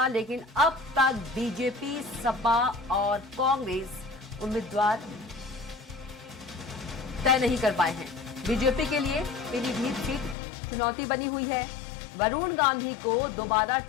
लेकिन अब तक बीजेपी, सपा और कांग्रेस उम्मीदवार तय नहीं कर पाए हैं। बीजेपी के लिए पीलीभीत सीट चुनौती बनी हुई है। वरुण गांधी को दोबारा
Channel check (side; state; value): right; drops out; at 10.4 s